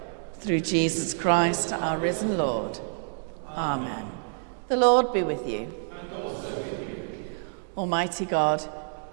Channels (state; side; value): silent; left; digital silence